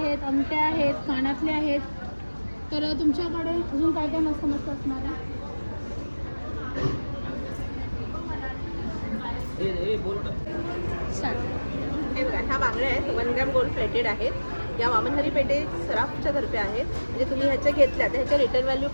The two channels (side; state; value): both; inverted; correlation -1.00